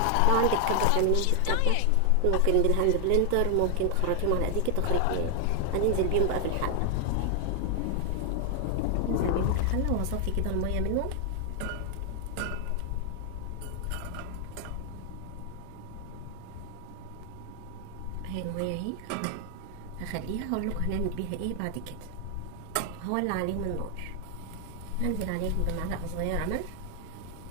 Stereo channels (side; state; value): both; different; correlation 0.00